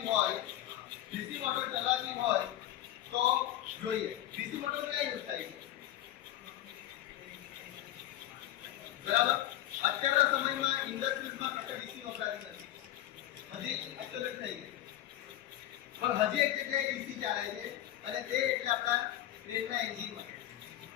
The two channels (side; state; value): right; quieter; 13.4 dB